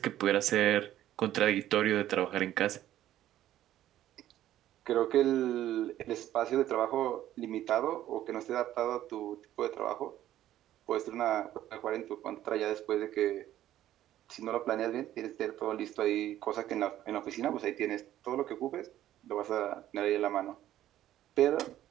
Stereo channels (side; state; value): left; quieter; 12.8 dB